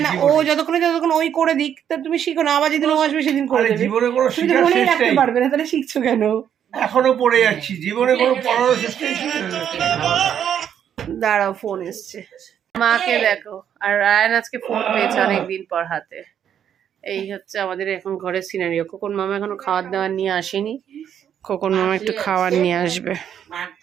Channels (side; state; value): left; quieter; 9.2 dB